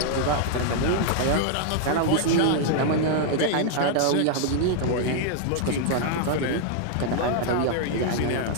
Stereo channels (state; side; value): different; both; correlation -0.01